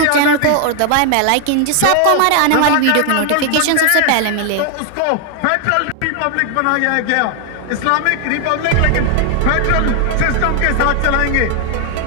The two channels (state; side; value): different; both; correlation 0.00